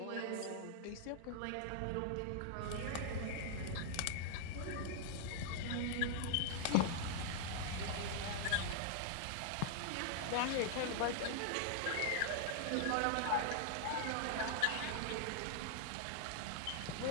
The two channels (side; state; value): both; different; correlation -0.01